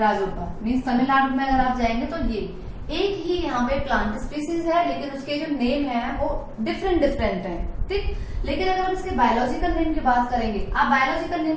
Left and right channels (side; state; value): both; identical; correlation 1.00